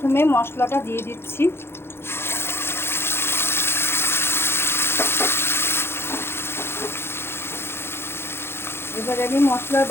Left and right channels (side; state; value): right; late; 0.12 ms